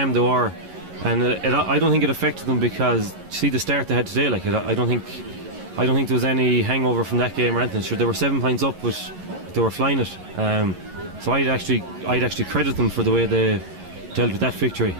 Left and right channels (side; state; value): left; late; 11 ms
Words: they were. And I don't think it affected them because, see the start they had today, I don't think there was any hangover from that game or anything. Sure, they were 7 points up, but they were flying it. So I'd actually credit them for the way they dealt with that victory.